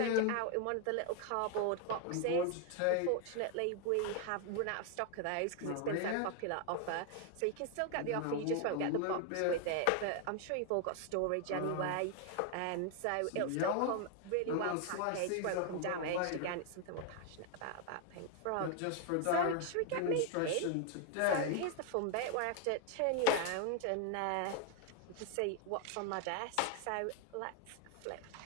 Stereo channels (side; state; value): both; different; correlation 0.00